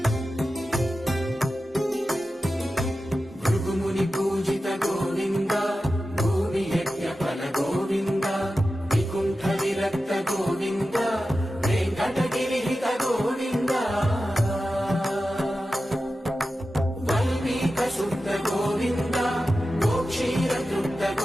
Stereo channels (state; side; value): normal; both; correlation 0.93